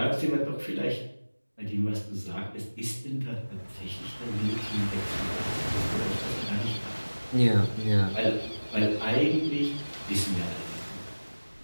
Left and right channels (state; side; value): inverted; both; correlation -1.00